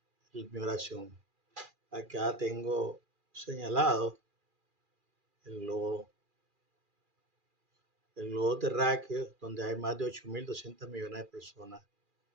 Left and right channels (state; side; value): late; left; 2.4 ms